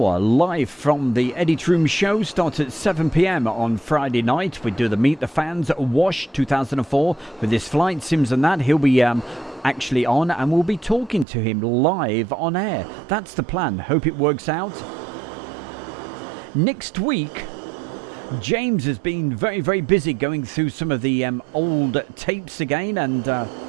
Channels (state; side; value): drops out; left; at 11.2 s